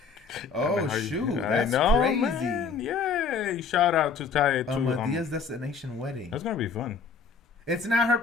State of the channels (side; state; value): right; quieter; 5.2 dB